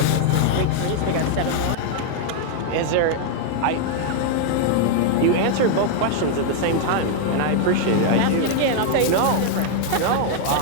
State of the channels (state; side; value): different; both; correlation 0.00